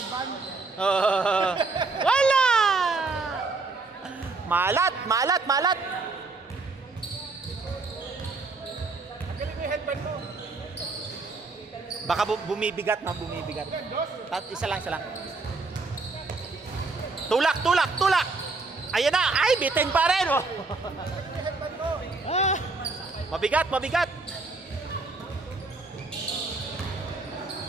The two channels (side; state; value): left; quieter; 3.8 dB